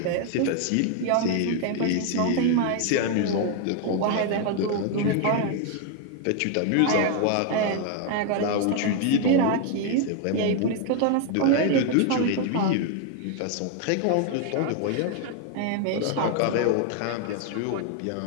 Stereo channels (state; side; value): different; both; correlation 0.01